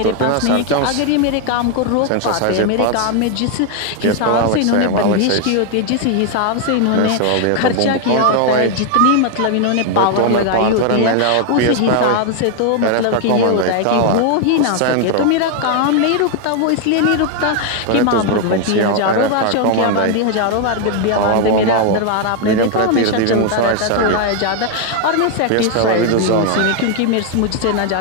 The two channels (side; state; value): both; different; correlation 0.00